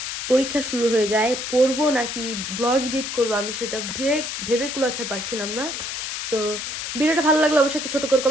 পরীক্ষা শুরু হয়ে যায়, পড়বো নাকি ব্লগ এডিট করবো আমি সেটা ভেবে কুলাতে পারছিলাম না। তো ভিডিওটা ভালো লাগলে অবশ্যই একটি ছোট করে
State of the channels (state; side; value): noise; left; hiss, 5 dB below the sound